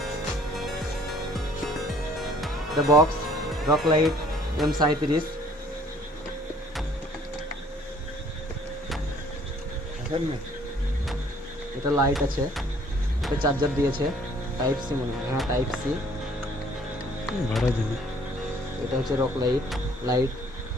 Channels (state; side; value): normal; both; correlation 0.57